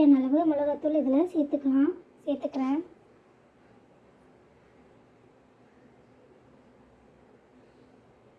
அளவு மிளகாத்தூள் இதில் சேர்த்துக்கிறேன்.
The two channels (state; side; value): identical; both; correlation 1.00